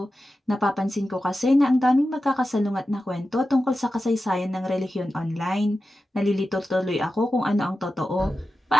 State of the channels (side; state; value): both; normal; correlation 0.92